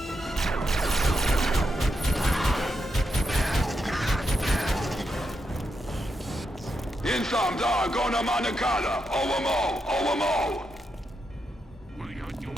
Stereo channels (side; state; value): both; normal; correlation 0.84